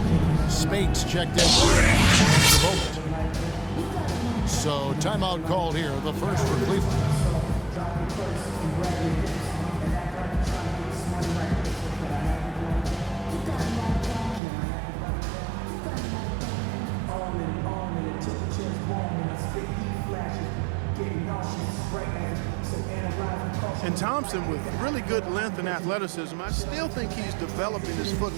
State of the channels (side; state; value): left; drops out; at 14.4 s